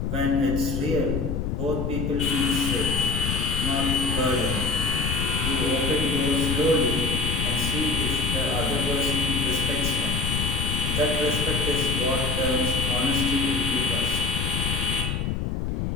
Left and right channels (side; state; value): left; noise; rumble, 1 dB below the sound